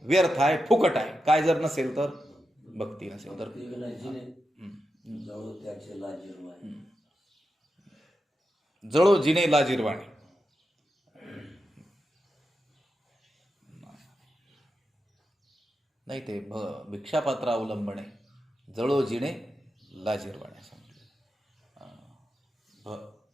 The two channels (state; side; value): normal; both; correlation 0.88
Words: व्यर्थ आहे, फुकट आहे. काय जर नसेल तर? भक्ती नसेल तर. जळो जिने लाजिरवाणे. नाही, ते भिक्षापात्र अवलंबणे, जळो जिने लाजिरवाणे सांगितलं.